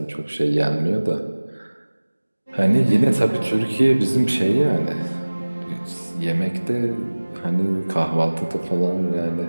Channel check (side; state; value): both; inverted; correlation -1.00